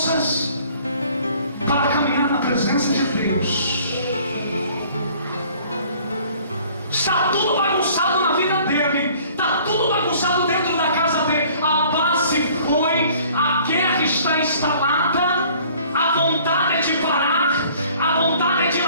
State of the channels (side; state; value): both; inverted; correlation -0.54